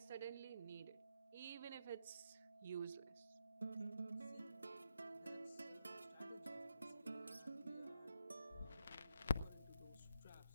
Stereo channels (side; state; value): both; inverted; correlation -0.82